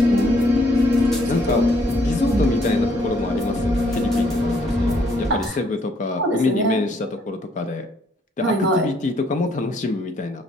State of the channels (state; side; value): normal; both; correlation 0.68